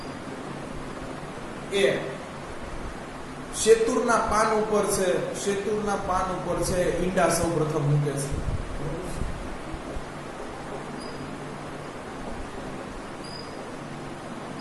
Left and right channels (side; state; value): both; identical; correlation 1.00